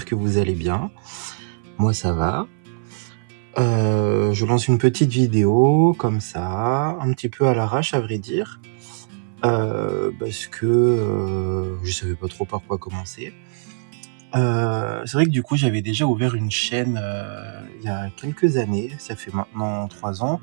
que vous allez bien. Moi ça va. Je lance une petite vidéo comme ça, un petit peu à l'arrache à vrai dire, parce que, je savais pas trop par quoi commencer. C'est vrai que du coup j'avais déjà ouvert une chaîne, il y a quelques années, ça fait maintenant 3 ans,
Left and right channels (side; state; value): left; silent; 61 dB below the other